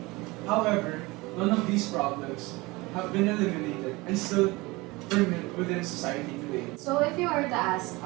However, none of these problems have been eliminated and still permanent within society today. So if you were to ask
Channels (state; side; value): quieter; left; 22.8 dB